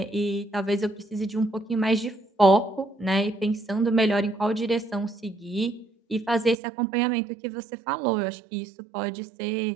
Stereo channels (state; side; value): drops out; left; at 6.6 s